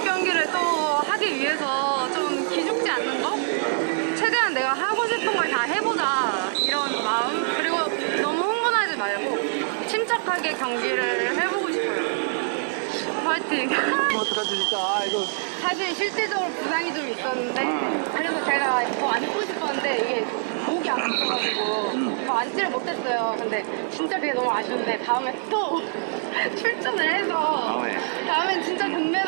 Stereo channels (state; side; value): silent; left; 62 dB below the other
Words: 경기를 또 하기 위해서 좀 기죽지 않는 거? 최대한 내가 하고 싶은 걸 다 해보자, 이런 마음. 그리고 너무 흥분하지 말고 침착하게 경기를 해보고 싶어요. 화이팅! 어떡하지 진짜 이거. 사실 실질적으로 부상이 좀 있었는데, 그래서 제가 더 앉고 싶었는데 이게 목이 아파가지고 더 앉지를 못했어요. 근데 진짜 그게 너무 아쉬운데 다음에 또 출전을 해서 다음엔 진짜